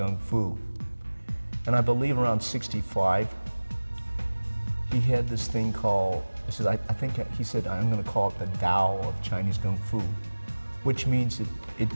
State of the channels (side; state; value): both; inverted; correlation -1.00